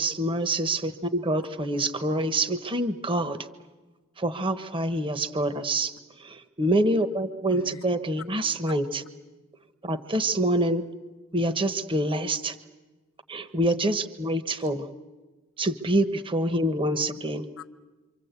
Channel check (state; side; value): normal; both; correlation 0.41